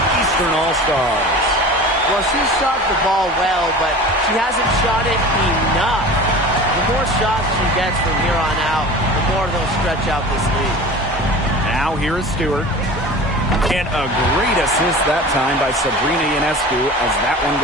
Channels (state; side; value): normal; both; correlation 0.37